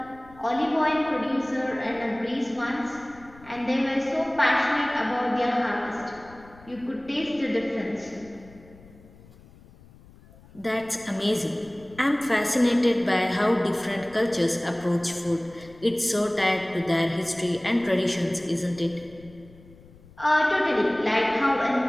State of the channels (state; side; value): noise; left; rumble, 23 dB below the sound